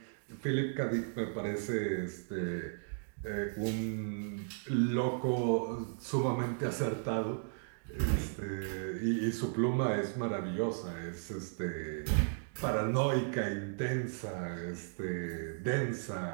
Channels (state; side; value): silent; left; digital silence